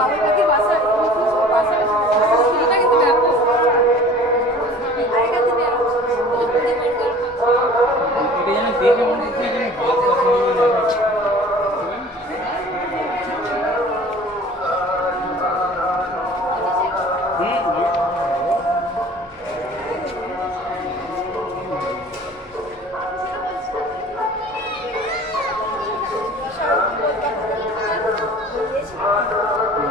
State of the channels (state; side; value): normal; both; correlation 0.45